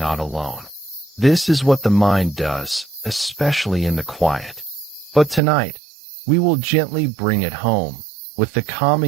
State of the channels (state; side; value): drops out; left; at 5.4 s